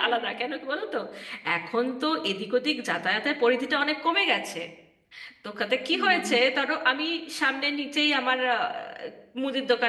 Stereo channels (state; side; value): identical; both; correlation 1.00